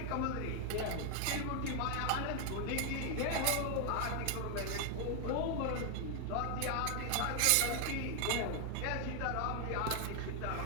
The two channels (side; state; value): both; different; correlation 0.00